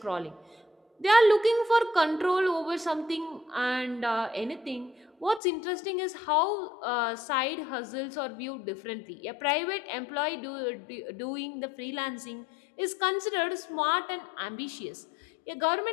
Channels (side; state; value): right; drops out; at 5.4 s